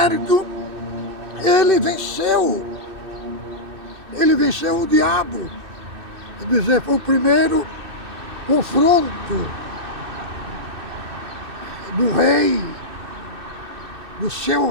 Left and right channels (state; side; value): late; left; 2.6 ms